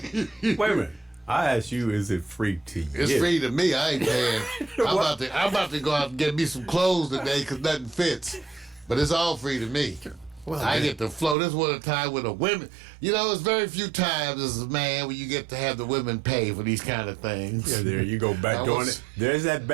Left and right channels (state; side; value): drops out; left; at 11.4 s